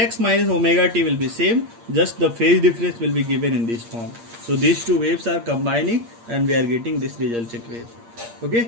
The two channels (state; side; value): late; left; 8.6 ms